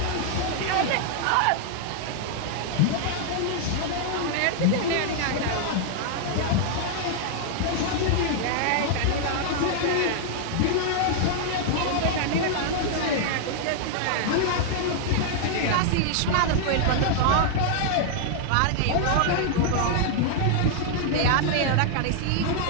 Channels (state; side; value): different; both; correlation -0.01